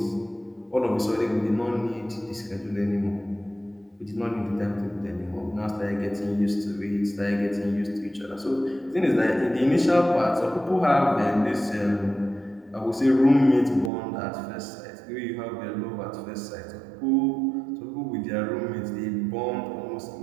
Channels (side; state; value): left; drops out; at 13.9 s